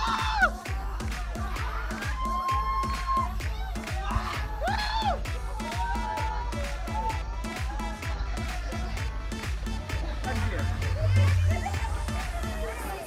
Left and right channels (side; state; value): both; identical; correlation 1.00